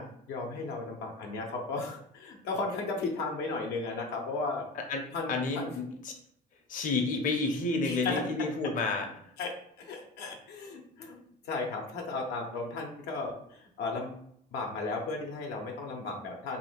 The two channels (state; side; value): quieter; right; 3.0 dB